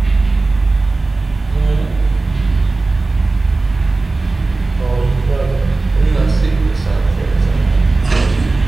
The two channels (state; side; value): quieter; left; 3.4 dB